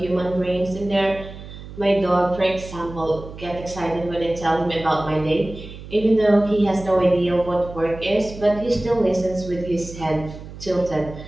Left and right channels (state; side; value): noise; right; hum, 14 dB below the sound